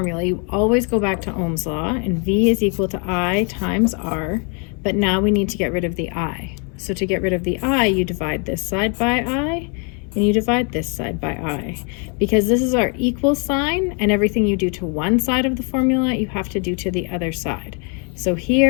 You always go back to Ohm's law, and V is equal to I times R, but now we need to get rid of the I. So to get rid of the I, you divide this side by I, and you divide this side by I. Because this is our equal sign, and everything you do to one side of the formula, you have to do to the other side. So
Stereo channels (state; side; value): quieter; right; 37.3 dB